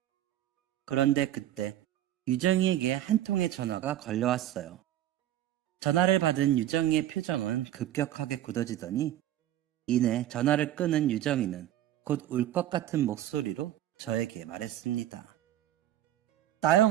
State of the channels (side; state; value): left; quieter; 12.8 dB